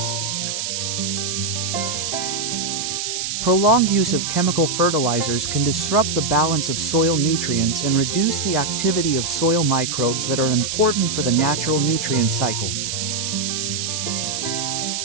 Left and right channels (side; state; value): right; noise; hiss, 2 dB below the sound